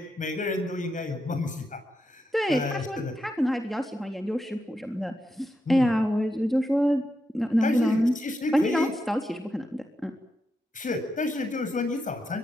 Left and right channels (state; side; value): normal; both; correlation 0.85